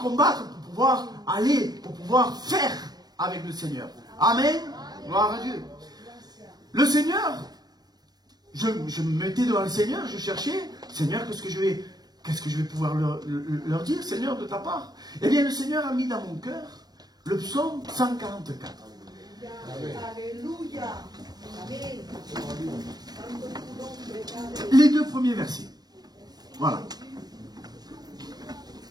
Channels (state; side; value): late; left; 0.19 ms